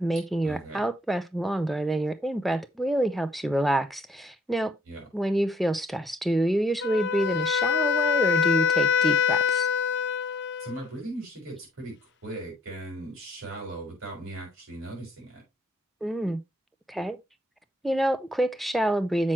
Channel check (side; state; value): both; normal; correlation 0.66